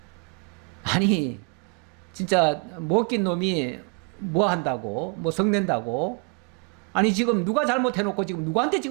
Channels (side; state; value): left; quieter; 34.7 dB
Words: 아니 진짜 먹긴 놈이 뭐 한다고, 뭐 성낸다고. 아니 지금 누가 잘못해놓고 지금 누구한테